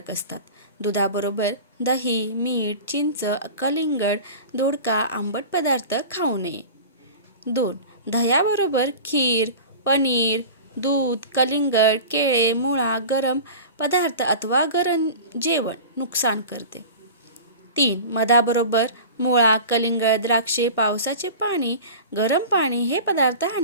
असतात. दुधाबरोबर दही, मीठ, चिंच, कलिंगड, दोडका, आंबट पदार्थ खाऊ नये. 2. दह्याबरोबर खीर, पनीर, दूध, कलिंगड, केळे, मुळा, गरम पदार्थ अथवा गरम जेवण नुकसान करते. 3. मधाबरोबर मुळा, कलिंगड, द्राक्षे, पावसाचे पाणी, गरम पाणी हे पदार्थ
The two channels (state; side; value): inverted; both; correlation -0.35